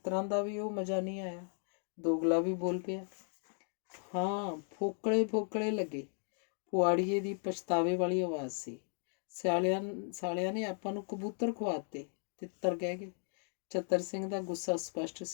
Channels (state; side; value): silent; right; 54 dB below the other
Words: ਦਾ ਵੀ ਉਹ ਮਜ਼ਾ ਨਹੀਂ ਆਇਆ। ਦੋਗਲਾ ਵੀ ਬੋਲ ਪਿਆ। ਹਾਂ, ਫੋਕਲੇ ਲੱਗੇ। ਪੁਆੜੀਏ ਦੀ ਪਛਤਾਵੇ ਵਾਲੀ ਆਵਾਜ਼ ਸੀ। ਸਾਲਿਆਂ ਨੇ ਆਪਾਂ ਨੂੰ ਕਬੂਤਰ ਖਵਾਤੇ, ਤਿੱਤਰ ਕਹਿ ਗਏ। ਚਤਰ ਸਿੰਘ ਦਾ ਗੁੱਸਾ ਸਪਸ਼ਟ